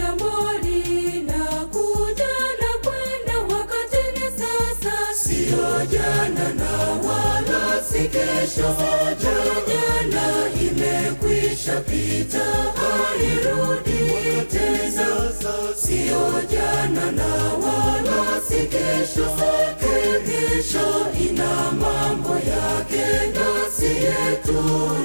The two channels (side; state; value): both; inverted; correlation -1.00